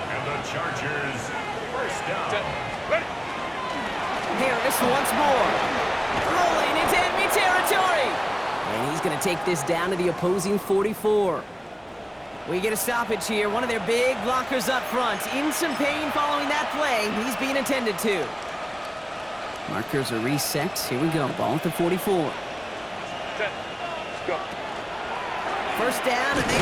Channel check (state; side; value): identical; both; correlation 1.00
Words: the Chargers, 1st down. Harris once more. Rolling into enemy territory. And he's going to take this down to the opposing 44. We get a stoppage here. One of their big blockers up front. In some pain following that play. He's being attended to. Markers are reset. Here we go. Ball at the 44. Go. 1st down, and they